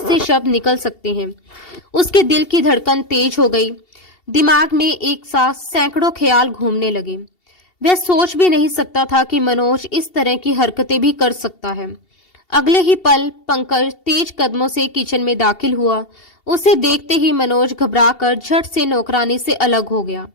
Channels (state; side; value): late; right; 2.7 ms